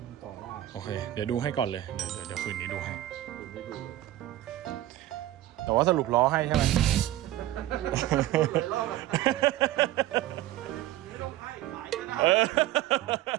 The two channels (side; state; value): left; quieter; 14.5 dB